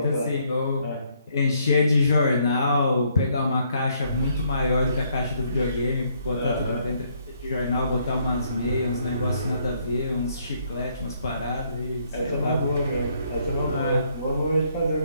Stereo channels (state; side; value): inverted; both; correlation -0.70